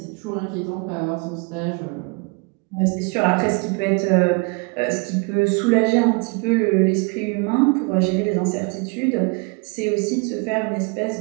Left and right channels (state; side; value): quieter; left; 31.0 dB